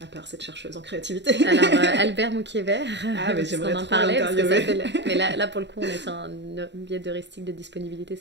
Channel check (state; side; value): late; left; 0.51 ms